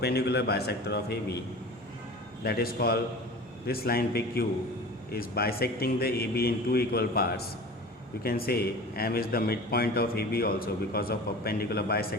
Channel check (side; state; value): both; normal; correlation 0.37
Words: bisector of AB. That is called, this line PQ is bisecting the AB in two equal parts. You can say M is the midpoint of AB also because of perpendicular